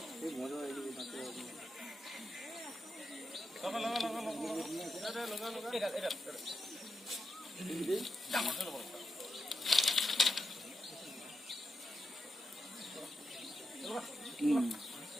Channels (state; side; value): normal; both; correlation 0.86